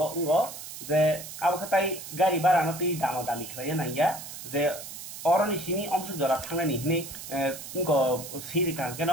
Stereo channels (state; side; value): noise; right; hiss, 11 dB below the sound